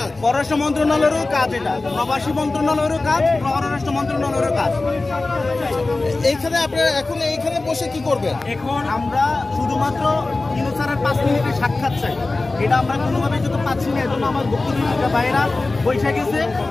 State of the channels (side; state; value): right; quieter; 3.3 dB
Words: পররাষ্ট্র মন্ত্রণালয়েরও কাজ, এটা প্রবাসী মন্ত্রণালয়েরও কাজ, পররাষ্ট্র মন্ত্রণালয়েরও কাজ। এইখানে আপনারা এখন এইখানে বসে কি করবেন? এখন আমরা শুধুমাত্র ইউনুসের 5 মিনিটের সাক্ষাৎ চাই। এটা আমরা কোনোভাবে যেতে পাচ্ছি না। এজন্য আমার বক্তব্য বাইরা বসে গেছে